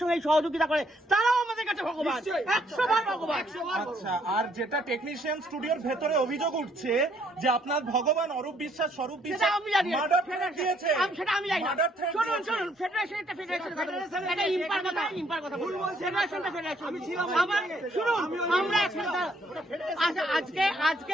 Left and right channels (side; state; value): both; normal; correlation 0.68